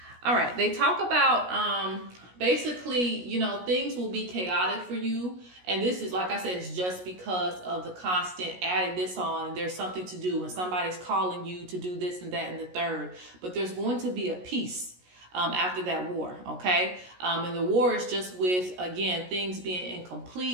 All right, they talk about basically, you know, things will be chaotic for you. And this is, like I said, it's just because of the constant adding this on. And there's something to do and somebody's calling you to do this and that and the third. But there's going to be a peace after that war, okay? And the war is just with, again, things being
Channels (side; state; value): left; late; 17 ms